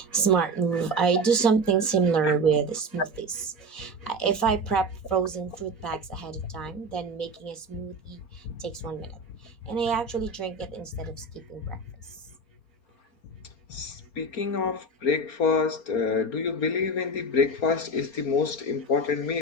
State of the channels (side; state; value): right; late; 4.0 ms